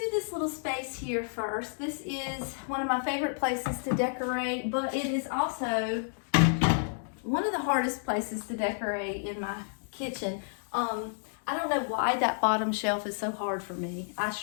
this little space here first. This is one of my favorite places to decorate, but it is also one of the hardest places to decorate in my kitchen. I don't know why that bottom shelf is so hard for me. I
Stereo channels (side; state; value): right; silent; digital silence